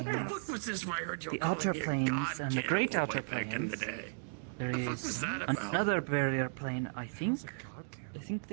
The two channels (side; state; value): left; silent; digital silence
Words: the planes. fuck was this where I heard you the calling outer me a planes god and the cannibal great way outer back in the planes. day? There The fuck was is that about? another barrier plane, I think. How's a god I cannibal? think